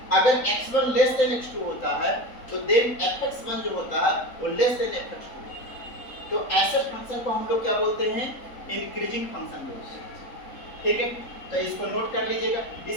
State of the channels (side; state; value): right; late; 3.9 ms